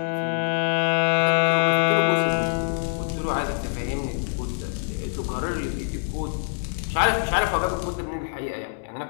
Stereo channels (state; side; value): silent; right; 62 dB below the other